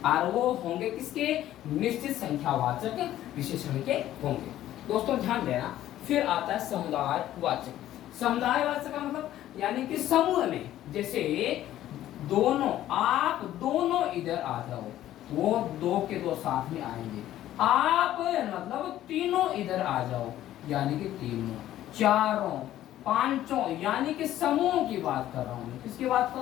और वो होंगे किसके, निश्चित संख्यावाचक विशेषण के होंगे। दोस्तों ध्यान देना। फिर आता है समुदायवाचक। समुदायवाचक का मतलब यानी कि समूह में, जैसे दोनों, आप दोनों इधर आ जाओ, वो 2 के 2 साथ में आएंगे। आप मतलब तीनों इधर आ जाओ यानी कि तीनों, चारों, पांचों यानी कि समूह की बात कर रहा हूं मैं। किसकी बात कर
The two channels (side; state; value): right; quieter; 13.1 dB